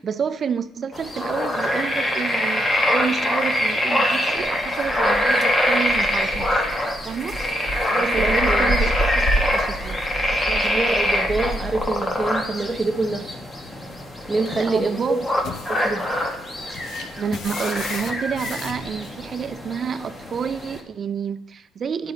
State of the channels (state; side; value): normal; both; correlation 0.79